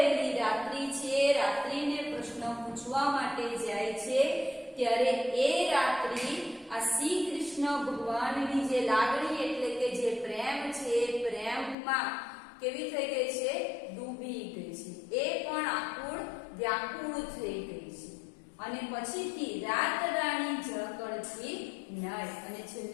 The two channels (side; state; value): right; drops out; at 11.8 s